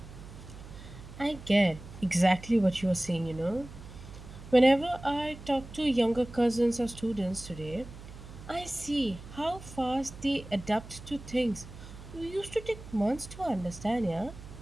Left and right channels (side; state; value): right; noise; hum, 15 dB below the sound